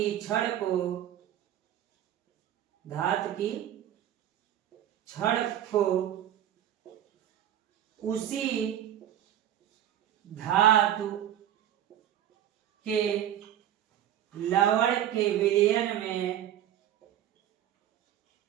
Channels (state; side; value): quieter; left; 11.3 dB